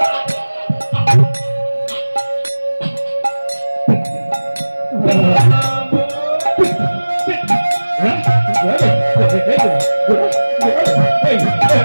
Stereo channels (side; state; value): both; inverted; correlation -1.00